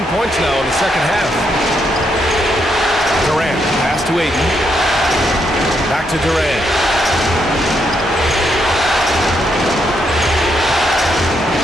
points now in the second half. Durant, pass to Ayton. Back to Durant.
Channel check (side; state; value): both; normal; correlation 0.78